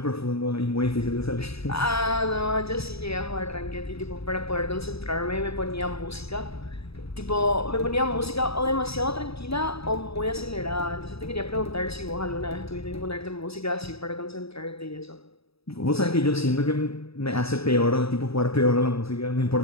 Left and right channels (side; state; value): right; late; 0.77 ms